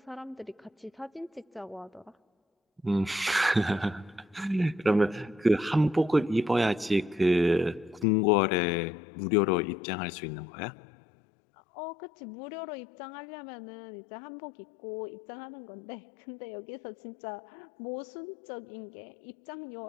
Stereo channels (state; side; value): drops out; right; at 8.1 s